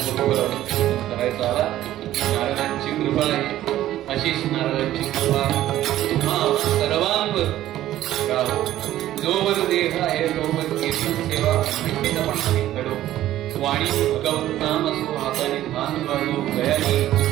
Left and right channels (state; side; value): quieter; left; 13.6 dB